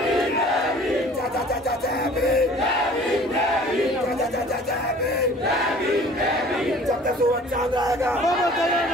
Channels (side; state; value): both; normal; correlation 0.49